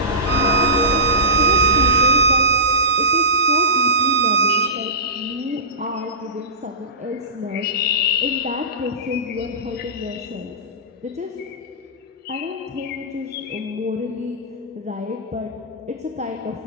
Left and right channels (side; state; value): both; normal; correlation -0.19